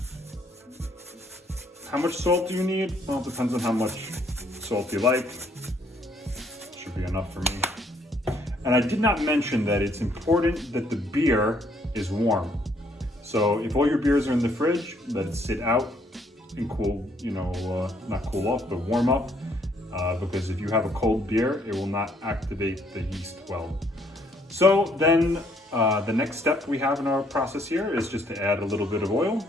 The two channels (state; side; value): normal; both; correlation 0.67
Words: How much salt do you need? Well, it depends on how much salt you like. Should be enough for me. And I did not mention that it's important that the beer is warm. So if all your beers are in the fridge, let it sit out and cool, not cool off, but warm up. Because if you have a cold beer, it will not activate the yeast well. So then the next step we have in our process here is just to add a little bit of oil.